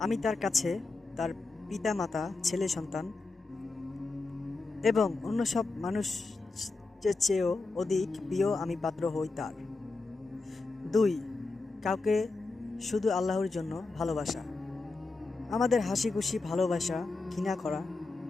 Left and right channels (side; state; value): right; quieter; 3.6 dB